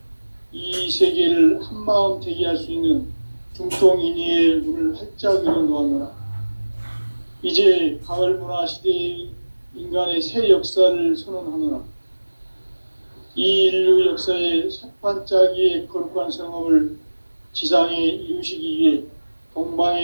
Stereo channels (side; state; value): both; inverted; correlation -1.00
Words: 이 세계를 한마음 대기할 수 있는 중통인의의 문을 활짝 열어놓았노라. 이제 가을 문화 시대의 인간의 새 역사를 선언하노라. 이 인류 역사의 새판짜기의 거룩한 성업을 지상에 이루시기 위해